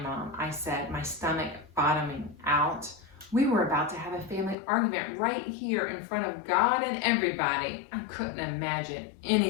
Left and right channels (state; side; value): drops out; right; at 4.5 s